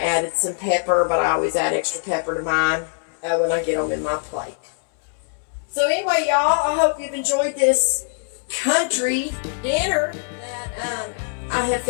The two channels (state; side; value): silent; right; 64 dB below the other